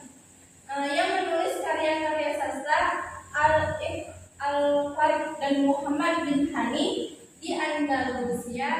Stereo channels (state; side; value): identical; both; correlation 1.00